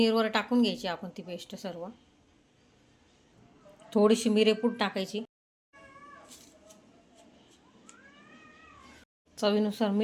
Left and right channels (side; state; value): both; identical; correlation 1.00